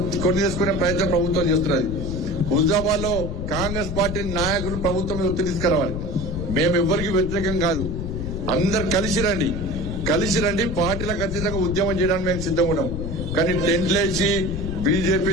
కొని చేసుకునే ప్రయత్నం ప్రభుత్వం చేస్తున్నది. హుజాబాద్ లో కాంగ్రెస్ పార్టీ నాయకులు ప్రభుత్వం మీద ఒత్తిడి తీసుకురావాలి. మేము ఎవరికి వ్యతిరేకం కాదు, అందరు కలిసి రండి పార్టీలకు అతీతంగా ఉద్యమం చేయడానికి మేము సిద్ధంగా ఉన్నాం. కానీ టెంట్లేసి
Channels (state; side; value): noise; left; rumble, 4 dB below the sound